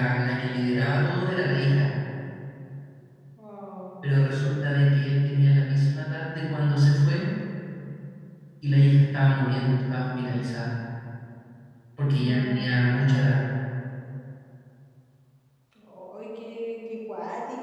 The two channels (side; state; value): both; identical; correlation 1.00